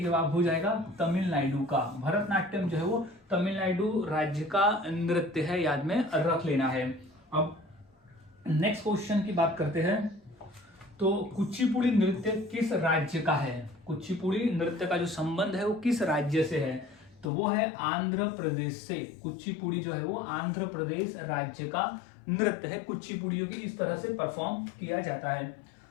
हो जाएगा तमिलनाडु का। भरतनाट्यम जो है वो तमिलनाडु राज्य का नृत्य है, याद में रख लेना है। अब नेक्स्ट क्वेश्चन की बात करते हैं। तो कुचिपुड़ी नृत्य किस राज्य का है। कुचिपुड़ी नृत्य का जो संबंध है वो किस राज्य से है, तो वो है आंध्र प्रदेश से। कुचिपुड़ी जो है वो आंध्र प्रदेश राज्य का नृत्य है। कुचिपुड़ियों की इस तरह से परफॉर्म किया जाता है।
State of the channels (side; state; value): right; drops out; at 17.3 s